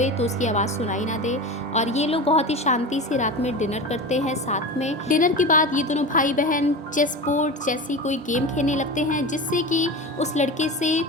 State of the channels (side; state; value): both; normal; correlation 0.28